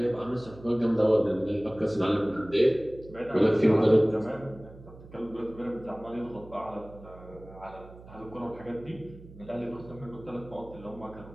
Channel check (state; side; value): noise; right; hum, 19 dB below the sound